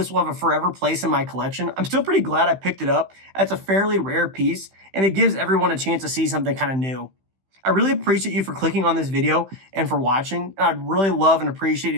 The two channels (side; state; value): left; late; 15 ms